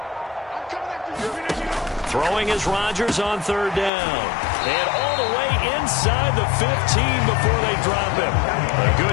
Throwing is Rodgers on 3rd down. And all the way inside the 15 before they drop him. A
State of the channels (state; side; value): drops out; right; at 3.9 s